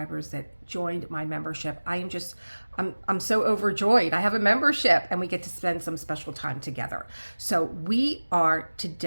that joined my membership. I'm so overjoyed. I have a membership and we get to spend some special time together. So we are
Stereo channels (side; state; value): both; inverted; correlation -1.00